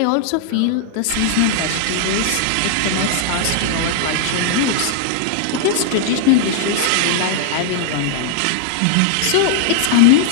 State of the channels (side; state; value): both; different; correlation -0.01